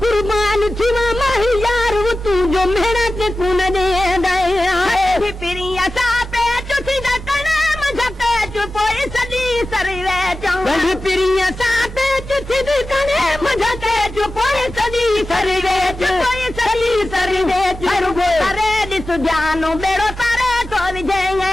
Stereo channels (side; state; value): both; normal; correlation 0.95